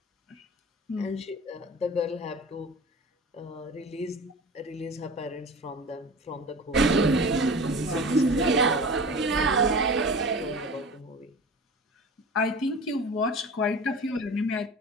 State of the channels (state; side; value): normal; both; correlation 0.36